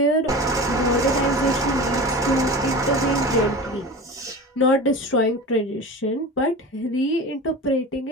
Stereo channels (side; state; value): both; normal; correlation 0.31